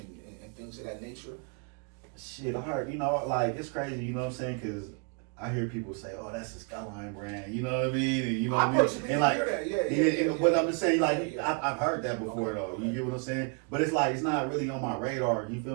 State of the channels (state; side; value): quieter; left; 35.9 dB